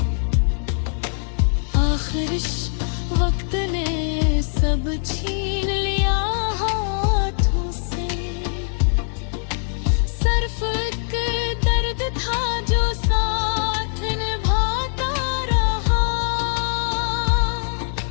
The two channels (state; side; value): silent; right; digital silence